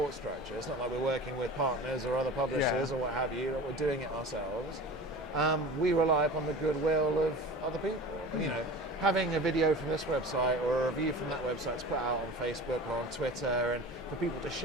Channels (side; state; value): both; normal; correlation 0.37